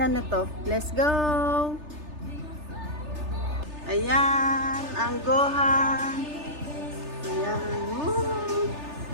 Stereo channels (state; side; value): late; left; 3.3 ms